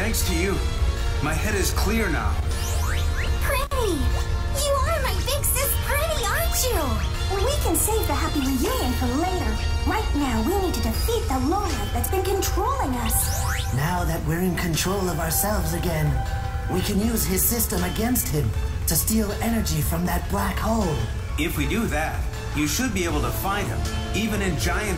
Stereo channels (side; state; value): both; identical; correlation 1.00